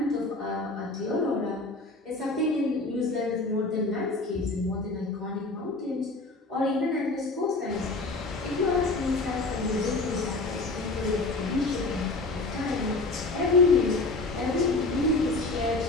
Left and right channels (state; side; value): quieter; right; 3.2 dB